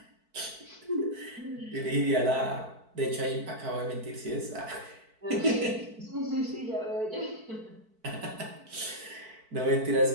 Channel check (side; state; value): left; late; 4.5 ms